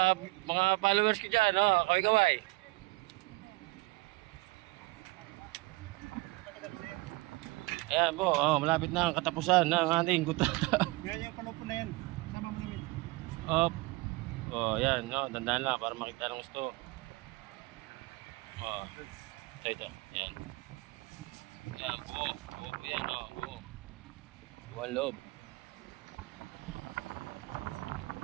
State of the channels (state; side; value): quieter; left; 23.3 dB